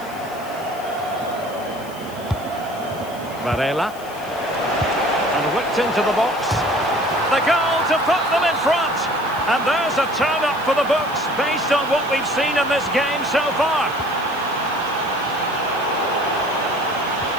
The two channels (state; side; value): noise; left; hiss, 20 dB below the sound